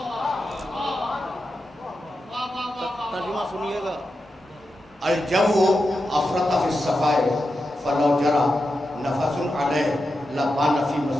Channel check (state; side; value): normal; both; correlation 0.89